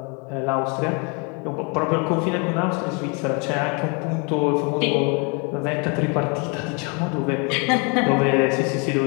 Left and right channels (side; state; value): right; quieter; 33.3 dB